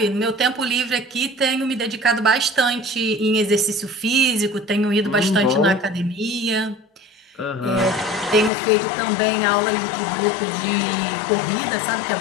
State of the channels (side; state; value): right; drops out; at 8.5 s